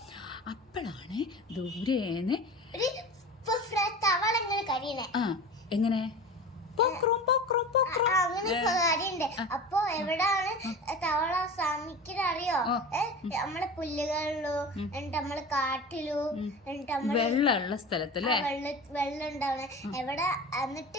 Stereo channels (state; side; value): normal; both; correlation 0.33